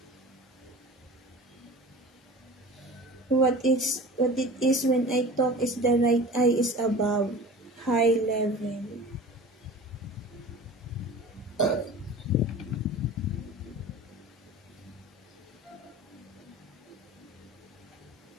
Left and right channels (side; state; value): both; normal; correlation 0.38